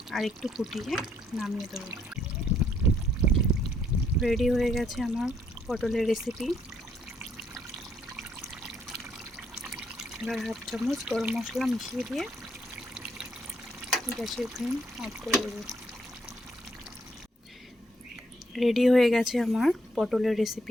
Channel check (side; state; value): both; normal; correlation 0.71